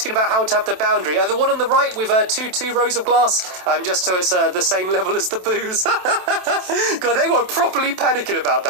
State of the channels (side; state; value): left; late; 27 ms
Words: about how to have the boundary. The one on the right with two rows of glass, just so it's the same level as the booze. God, they were properly panicking about